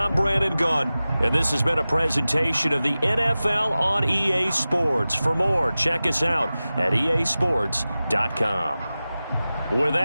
Brandon Gunn. And this has been a presentation of the NFL on EA Sports. For more, check us out at easports.com. With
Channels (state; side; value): inverted; both; correlation -0.96